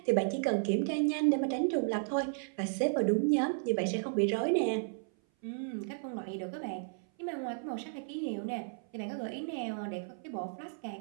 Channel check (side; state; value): left; silent; 55 dB below the other